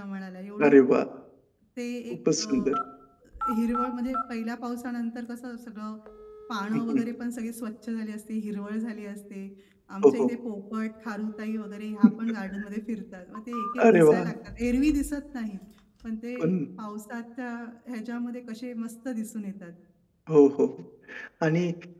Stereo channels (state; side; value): identical; both; correlation 1.00